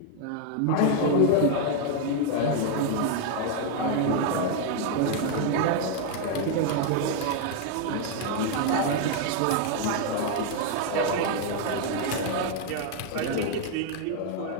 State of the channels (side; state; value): both; different; correlation 0.00